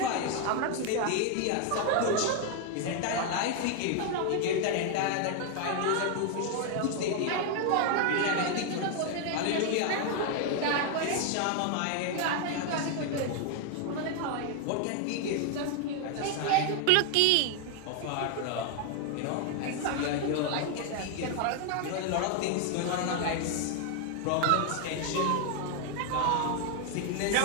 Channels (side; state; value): both; different; correlation 0.00